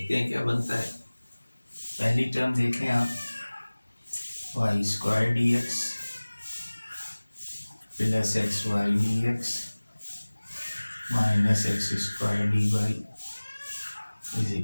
हैं क्या बनता है। पहली टर्म देखें आप, Y square D X plus X Y D X minus X square D Y is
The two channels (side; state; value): both; inverted; correlation -1.00